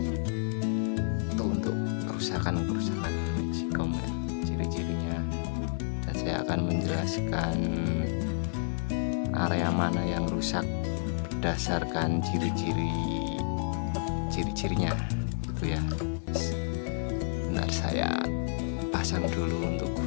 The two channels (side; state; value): right; silent; 58 dB below the other